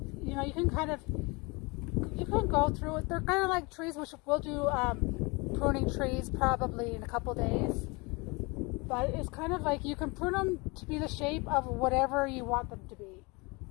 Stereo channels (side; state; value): right; quieter; 27.3 dB